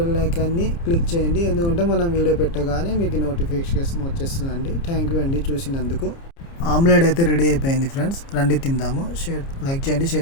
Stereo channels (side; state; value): right; late; 29 ms